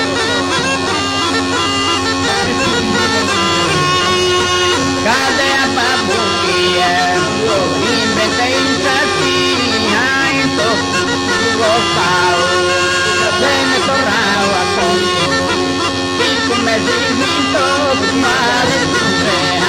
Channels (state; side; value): identical; both; correlation 1.00